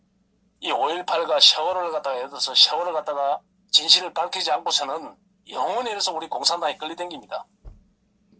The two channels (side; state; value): both; identical; correlation 1.00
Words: 이 5.18과 세월호를 갖다가 예를 들어서 세월호를 갖다가 진실을 밝히지 않고서는 영원히 해서 우리 공산당이 끌리댕깁니다.